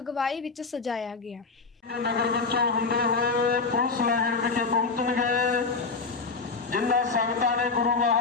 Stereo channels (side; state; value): right; quieter; 4.4 dB